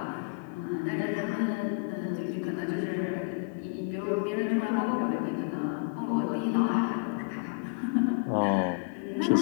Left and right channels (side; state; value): right; quieter; 33.6 dB